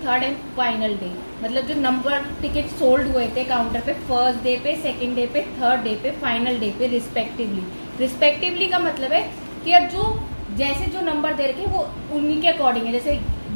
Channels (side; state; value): both; inverted; correlation -1.00